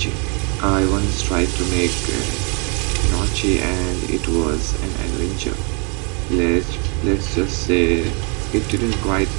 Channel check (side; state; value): left; quieter; 35.5 dB